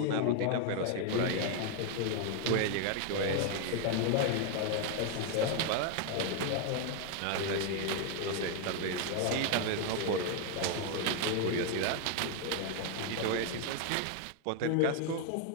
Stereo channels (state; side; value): different; both; correlation 0.01